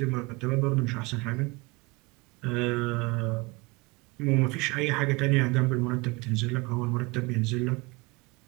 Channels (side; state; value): left; quieter; 25.4 dB